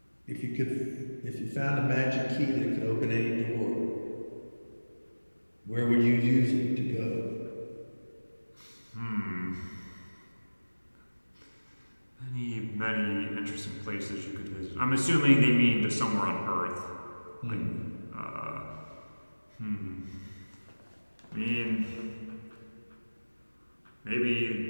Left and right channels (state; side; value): inverted; both; correlation -1.00